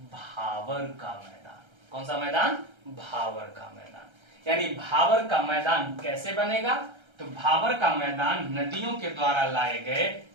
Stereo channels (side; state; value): left; late; 1.3 ms